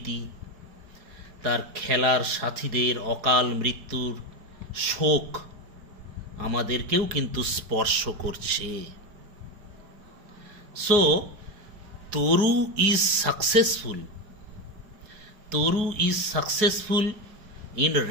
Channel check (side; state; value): left; late; 4.7 ms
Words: তার খেলার সাথীদের অকাল মৃত্যুর শোক আমাদেরকেও কিন্তু স্পর্শ করছে। So Taru is successful in